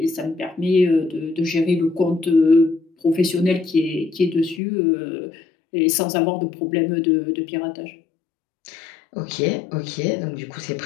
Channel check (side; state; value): right; drops out; at 4.6 s